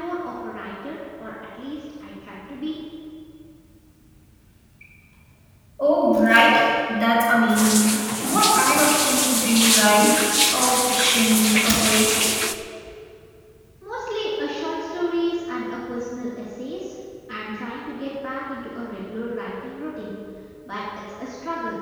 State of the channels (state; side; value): identical; both; correlation 1.00